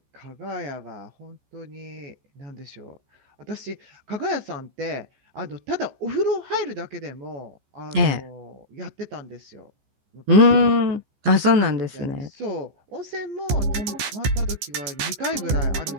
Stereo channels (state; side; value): late; left; 14 ms